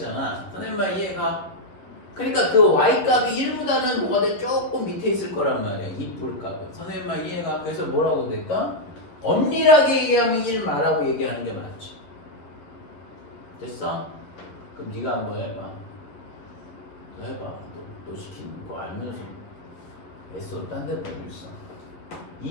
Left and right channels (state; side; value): late; right; 11 ms